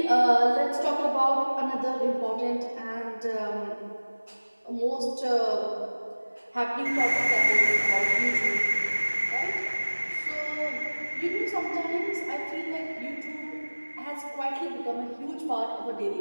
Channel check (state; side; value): inverted; both; correlation -1.00